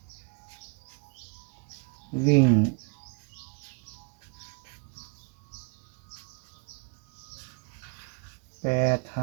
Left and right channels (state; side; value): quieter; left; 33.1 dB